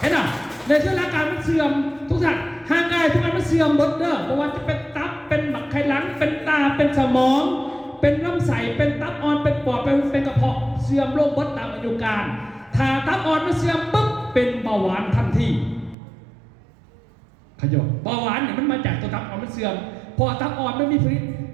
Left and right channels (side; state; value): left; drops out; at 16.0 s